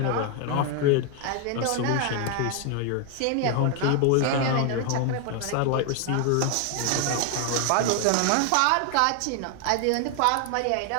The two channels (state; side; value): different; both; correlation 0.00